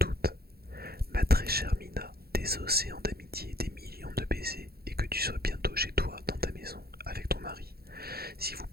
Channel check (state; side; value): late; left; 0.45 ms